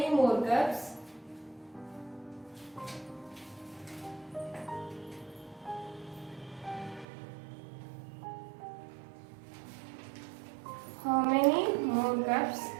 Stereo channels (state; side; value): drops out; left; at 7.1 s